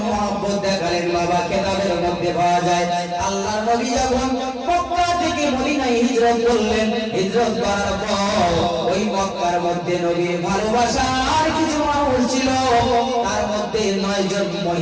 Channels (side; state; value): both; identical; correlation 1.00